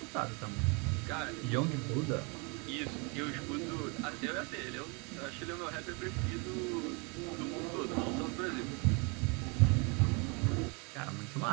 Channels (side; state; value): left; quieter; 32.0 dB